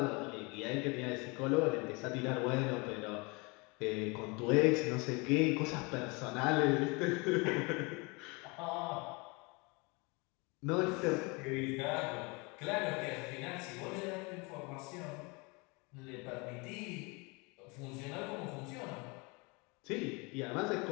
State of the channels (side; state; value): right; quieter; 28.4 dB